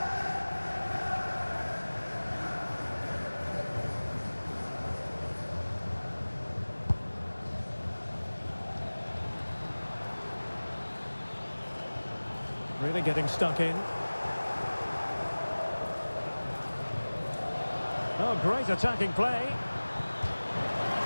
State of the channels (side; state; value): both; inverted; correlation -1.00